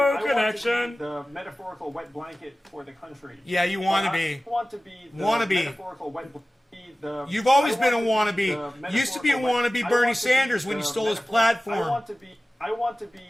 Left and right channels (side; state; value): both; normal; correlation 0.96